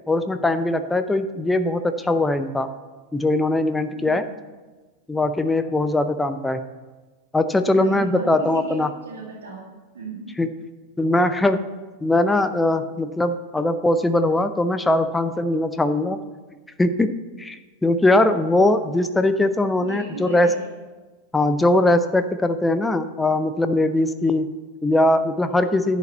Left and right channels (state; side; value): normal; both; correlation 0.75